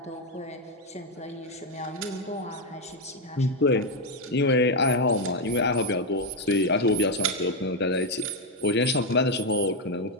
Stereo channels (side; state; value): both; normal; correlation 0.04